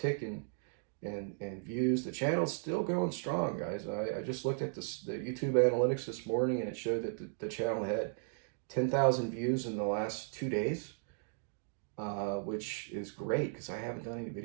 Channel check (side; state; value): left; silent; digital silence